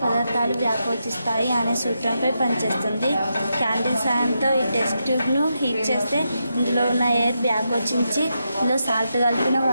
పదార్థాలు వ్యాకోచిస్తాయి అనే సూత్రంపై పనిచేస్తుంది. క్యాండిల్ సాయంతో ఈ టెస్ట్ ట్యూబ్ను హీట్ చేస్తే ఇందులో ఉన్న ఎయిర్ వ్యాకోచించి ఇందులో సాల్ట్ కలిపిన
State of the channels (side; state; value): both; inverted; correlation -0.85